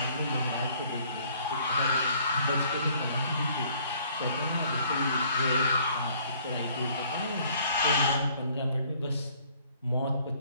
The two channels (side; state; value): both; inverted; correlation -0.59